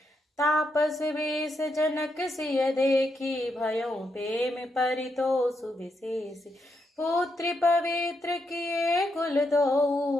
तापस वेश जनक सिय देखी भयों प्रेम परितोषु विशेष पुत्र पवित्र किए कुल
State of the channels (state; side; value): normal; both; correlation 0.81